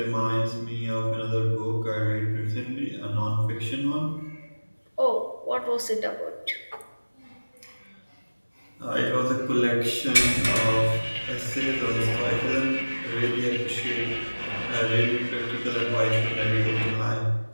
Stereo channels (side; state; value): both; inverted; correlation -1.00